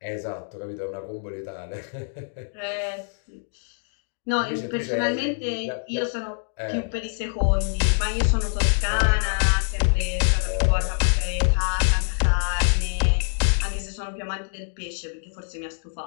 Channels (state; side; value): silent; right; digital silence